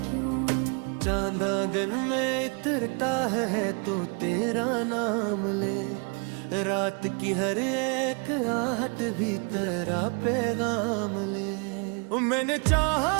क्यों। चांद आंगन में इतरता है तो तेरा नाम ले, रात की हर एक आहट भी तेरा पैगाम ले। मैंने चाहा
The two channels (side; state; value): left; quieter; 35.6 dB